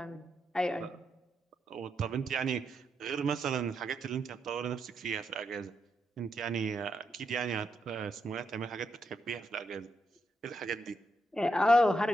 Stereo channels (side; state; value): both; normal; correlation 0.81